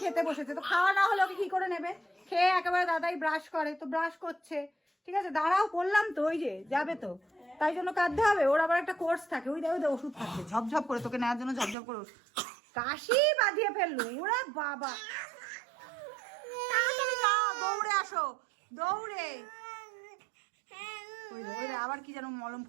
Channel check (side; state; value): left; drops out; at 11.8 s